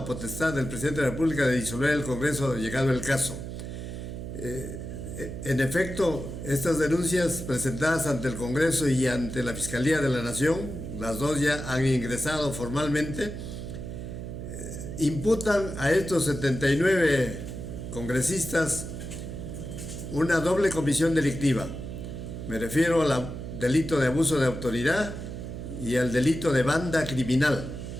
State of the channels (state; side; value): noise; right; hum, 8 dB below the sound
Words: potestad del presidente de la República de disolver el Congreso llegado el caso. En efecto, estas denuncias presentadas ante el Congreso y ante la Fiscalía de la Nación, las dos ya han ingresado formalmente, imputan a estos 79 congresistas una doble comisión delictiva. Me refiero al delito de abuso de autoridad y al delito de banda criminal.